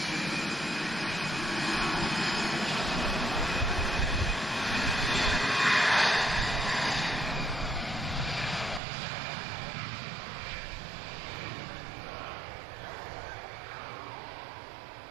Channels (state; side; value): drops out; left; at 8.8 s